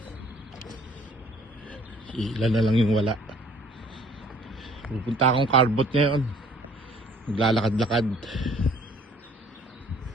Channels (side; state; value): both; normal; correlation 0.56